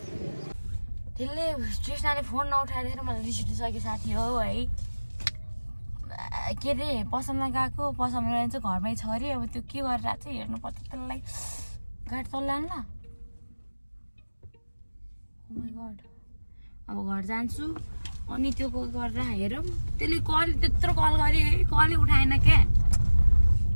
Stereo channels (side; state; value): both; inverted; correlation -1.00